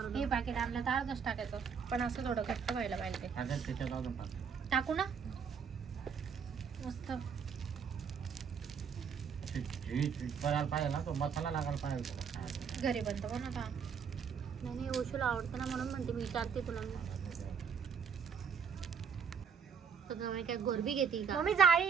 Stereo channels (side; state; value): left; quieter; 6.5 dB